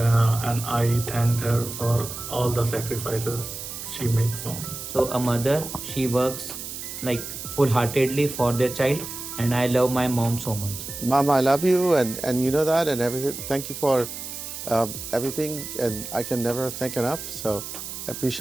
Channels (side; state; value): right; noise; hiss, 9 dB below the sound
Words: I thank her for all the sacrifices she made for me. So a mother, she works like full-heartedly for their child, and I love my mom so much. Mom, I love you, and you know that, and everything. Thank you for everything, and I can never thank enough. So I